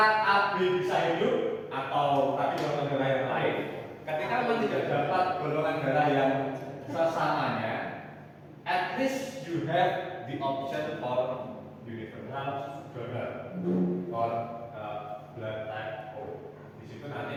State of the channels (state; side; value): identical; both; correlation 1.00